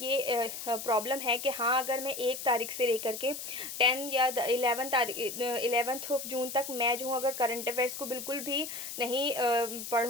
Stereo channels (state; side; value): noise; left; hiss, 8 dB below the sound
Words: प्रॉब्लम है कि हाँ, अगर मैं 1 तारीख से लेकर के 10 या 11th ऑफ जून तक मैं जो हूँ अगर करंट अफेयर्स को बिल्कुल भी नहीं